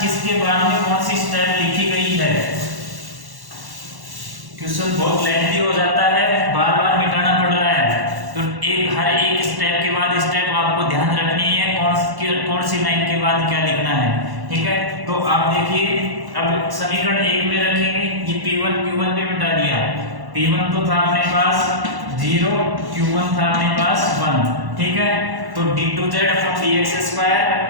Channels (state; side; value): late; left; 1.1 ms